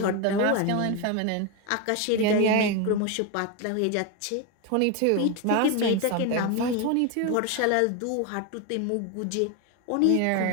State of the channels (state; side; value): different; both; correlation 0.02